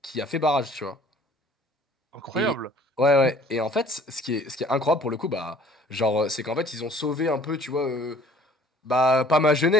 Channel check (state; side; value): normal; both; correlation 0.54